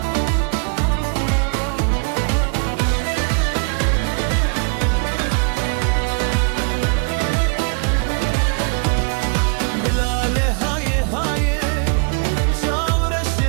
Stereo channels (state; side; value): quieter; left; 38.4 dB